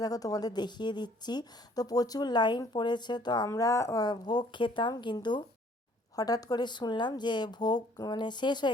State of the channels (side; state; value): both; normal; correlation 0.59